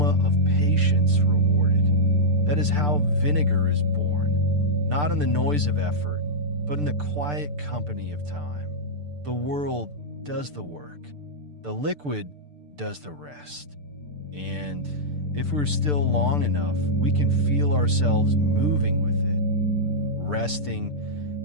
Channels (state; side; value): late; left; 6.8 ms